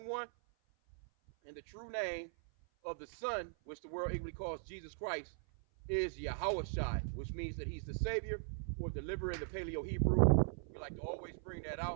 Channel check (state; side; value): silent; left; 51 dB below the other